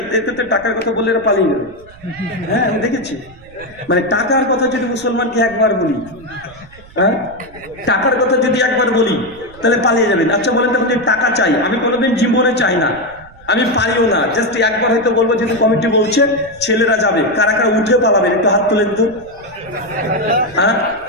তো টাকার কথা বলে এরা পালিয়ে গেল। হ্যাঁ, আমি দেখেছি। মানে টাকার কথা যদি মুসলমানকে একবার বলি, হ্যাঁ টাকার কথা যদি একবার বলি তাহলে পালিয়ে যাবেন। আচ্ছা বলেন তো, আপনি টাকা চাই? আমি কোনোদিন জীবনে চাই না, আমি পারিও না। জাস্ট একবার হয়তো বলবো যেহেতু কমিটি বলছে ছেলেরা যাবে, কারা কারা উঠে পালাবেন একটু হাত তুলেন তো। হ্যাঁ,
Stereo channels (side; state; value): right; noise; rumble, 23 dB below the sound